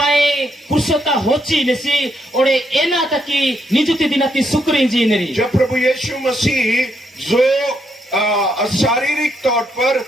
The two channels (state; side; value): normal; both; correlation 0.77